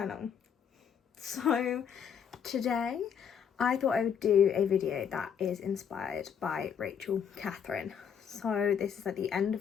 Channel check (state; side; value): quieter; right; 7.7 dB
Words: So today I thought I would do a video that is inspired by Rachel Catherine. So this is at the end